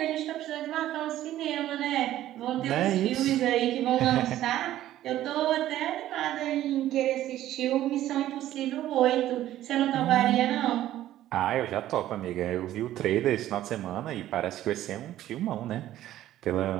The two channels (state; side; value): quieter; left; 13.4 dB